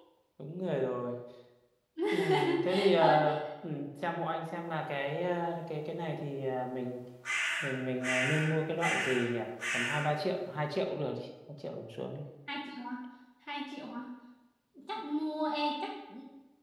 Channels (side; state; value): both; identical; correlation 1.00